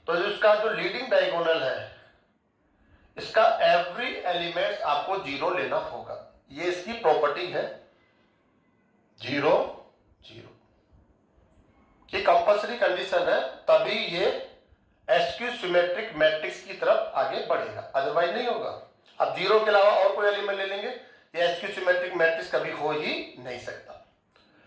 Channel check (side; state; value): both; identical; correlation 1.00